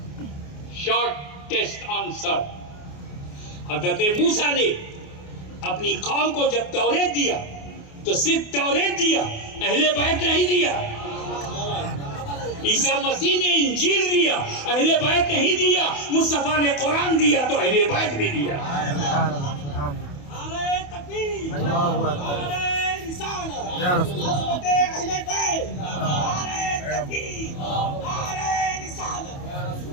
Short test answer. हज़रत मूसा ने अपनी कौम को जब तौरेत दिया तो सिर्फ तौरेत दिया, अहले बैत नहीं दिया। ईसा मसीह ने इंजील दिया, अहले बैत नहीं दिया। मुस्तफा ने कुरान दिया तो अहले बैत भी दिया।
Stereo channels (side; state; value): right; late; 28 ms